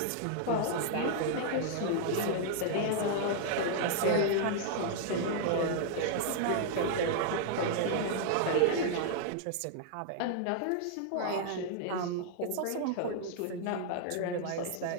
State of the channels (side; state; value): both; different; correlation 0.00